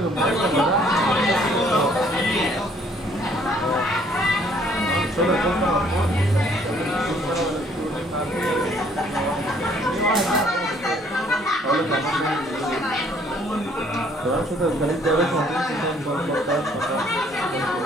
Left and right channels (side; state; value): both; normal; correlation 0.62